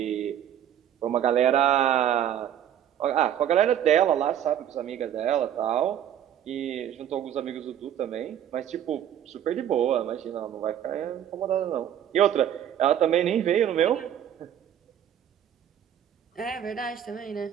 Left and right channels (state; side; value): quieter; left; 10.1 dB